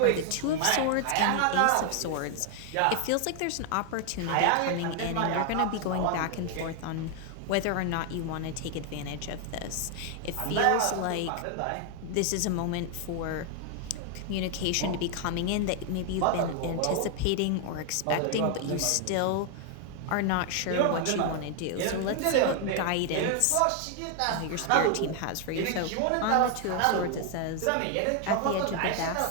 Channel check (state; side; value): different; both; correlation 0.00